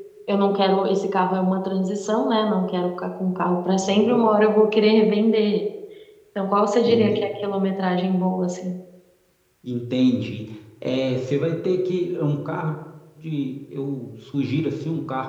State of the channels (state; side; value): identical; both; correlation 1.00